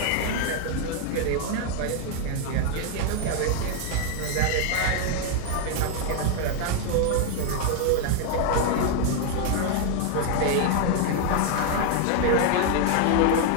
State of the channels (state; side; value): different; both; correlation 0.00